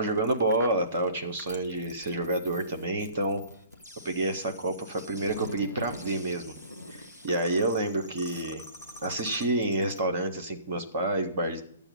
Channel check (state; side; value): inverted; both; correlation -0.48